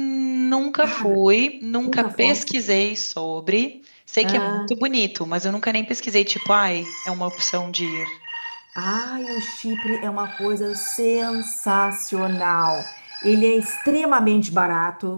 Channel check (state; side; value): inverted; both; correlation -1.00